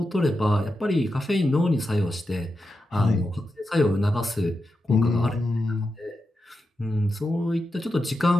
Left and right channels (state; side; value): normal; both; correlation 0.89